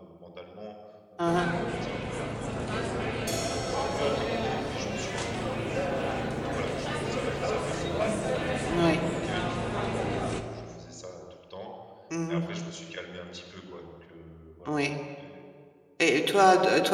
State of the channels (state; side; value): identical; both; correlation 1.00